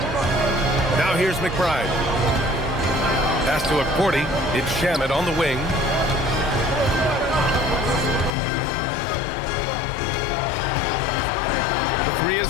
Now here's McBride. Pass to Porty. It's Shamet on the wing. The 3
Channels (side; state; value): right; drops out; at 8.3 s